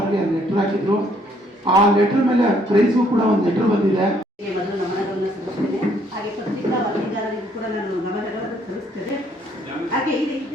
ಲೆಟರ್ ಹಾಕಿದ್ರು. ಆ ಲೆಟರ್ ಮೇಲೆ ಕ್ರೈಸ್ಗೂ ಕೂಡ ಒಂದು ಲೆಟರ್ ಬಂದಿದೆ. ಮೊದಲು ನಮನಗಳನ್ನು ಸಲ್ಲಿಸ್ತೇನೆ. ಹಾಗೆ ಪತ್ರಿಕಾ ವರದಿಗಾರರಿಗೂ ಕೂಡ ನಾನು ನಮನಗಳನ್ನು ಸಲ್ಲಿಸ್ತೇನೆ. ಹಾಗೆ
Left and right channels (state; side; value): normal; both; correlation 0.66